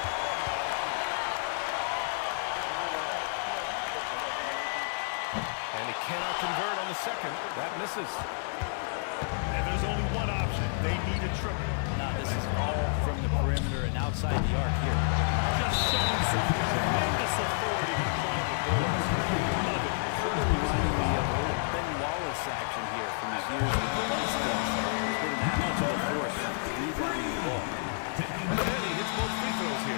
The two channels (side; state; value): right; silent; digital silence